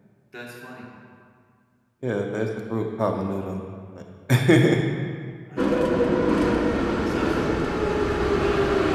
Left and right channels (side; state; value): both; identical; correlation 1.00